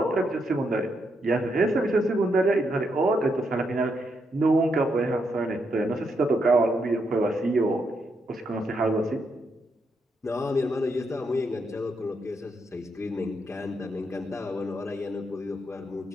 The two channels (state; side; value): normal; both; correlation 0.80